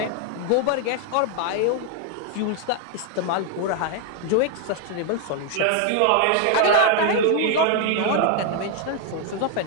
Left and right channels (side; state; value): both; different; correlation 0.00